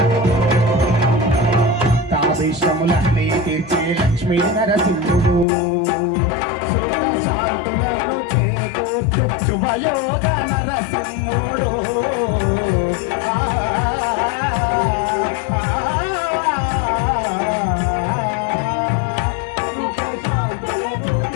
తావేశములన్నీ తీర్చే లక్ష్మీ నరసింహుడు శాంతులను చేకూర్చు శుభయోగ నరసింహుడు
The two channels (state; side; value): drops out; right; at 5.5 s